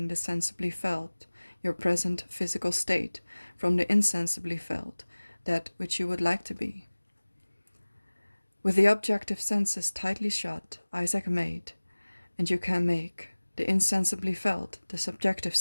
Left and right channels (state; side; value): inverted; both; correlation -1.00